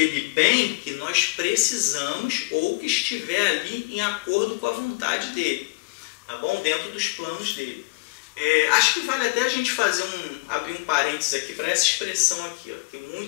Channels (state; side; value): quieter; right; 30.9 dB